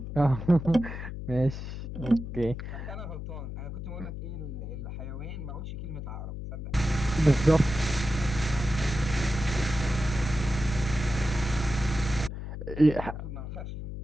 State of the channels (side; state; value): left; noise; hum, 7 dB below the sound